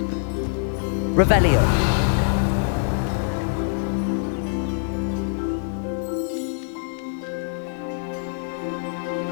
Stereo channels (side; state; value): right; silent; digital silence